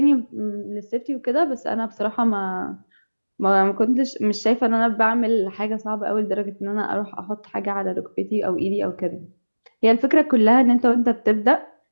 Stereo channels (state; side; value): inverted; both; correlation -1.00